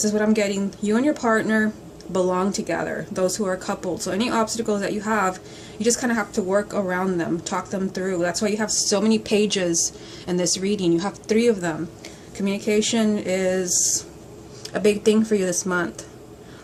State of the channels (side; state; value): both; identical; correlation 1.00